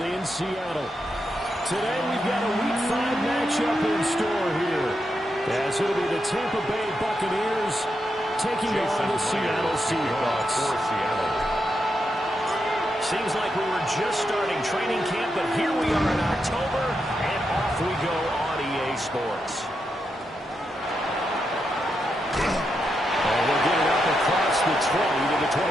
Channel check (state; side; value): normal; both; correlation 0.84